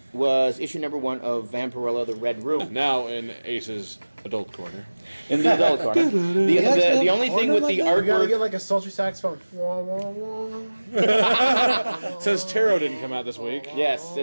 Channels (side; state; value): both; inverted; correlation -1.00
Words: was issue number 1 of Vampirella: The Red Room. Now in Ace's adult corner. In the adult corner. The only thing with the You gotta artwork. get like a sultry saxophone. Wah, wah, wah. Since Tarot didn't come out this week. Yes,